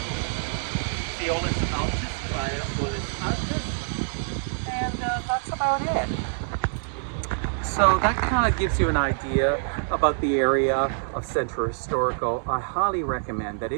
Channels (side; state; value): left; silent; digital silence